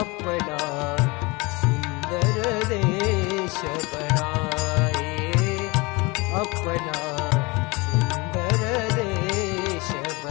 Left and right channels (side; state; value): right; quieter; 25.6 dB